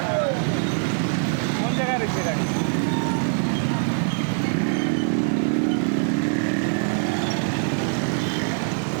কোন জায়গায় রয়েছে গাড়ি?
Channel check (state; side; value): silent; left; 58 dB below the other